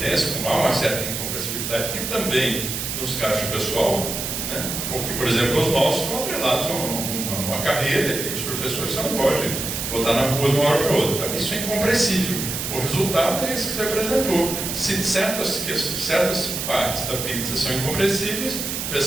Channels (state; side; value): noise; right; hiss, 4 dB below the sound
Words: como há uma certa incompressibilidade, e também nos gastos pessoal, né? Porque, por exemplo, os nossos estão atrelados a uma carreira, que os professores não podem botar na rua de uma hora para outra. Então, isso é incompressível. O resultado é esse que você apresentou. Se certas partes da pizza são incompressíveis, a